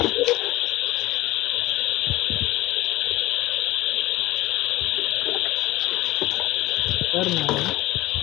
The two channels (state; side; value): quieter; right; 18.2 dB